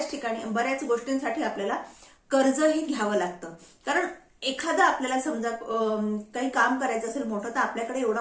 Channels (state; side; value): identical; both; correlation 1.00